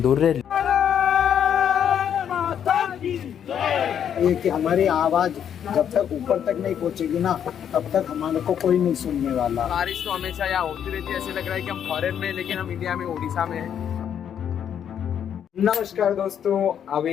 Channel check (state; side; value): quieter; right; 8.9 dB